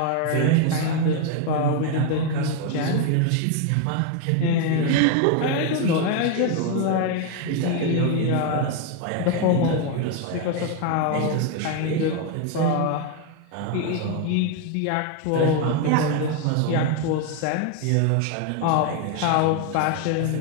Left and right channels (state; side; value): different; both; correlation 0.01